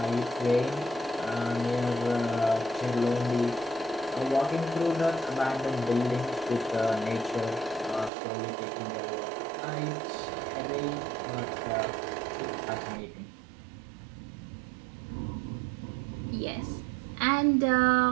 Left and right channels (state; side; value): drops out; left; at 8.1 s